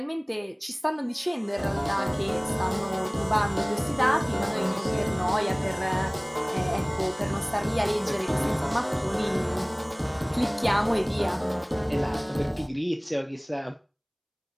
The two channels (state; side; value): identical; both; correlation 1.00